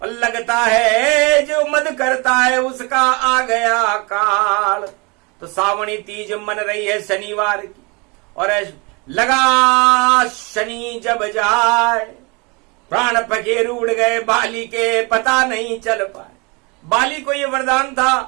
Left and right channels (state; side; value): quieter; left; 29.0 dB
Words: और लगता है जो मद करता है उसका आ गया काल। तो सावणी तीज मन रही है शनिवार की और लगा शनि जब जाए प्राण पखेरु उड़ गए बाली के पता नहीं चल पाए। बाली को ये वरदान